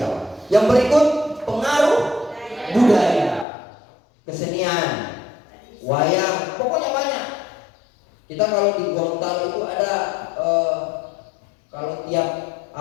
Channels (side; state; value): right; drops out; at 3.5 s